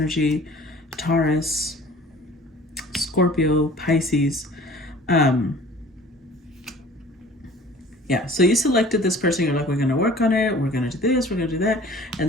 Taurus, Scorpio, Pisces. Yeah, so you selected this person. You're like, we're going to work on it. We're going to do this. We're going to do that.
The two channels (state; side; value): normal; both; correlation 0.47